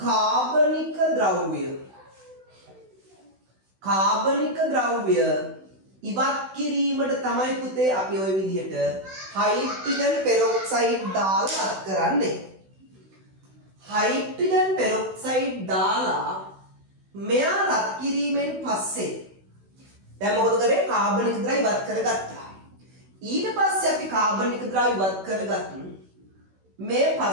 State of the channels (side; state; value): left; late; 16 ms